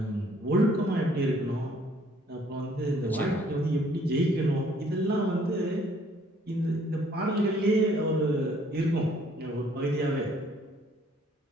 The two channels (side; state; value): both; normal; correlation 0.61